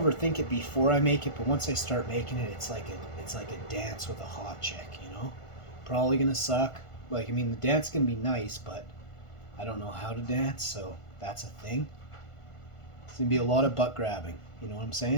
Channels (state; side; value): late; right; 1.5 ms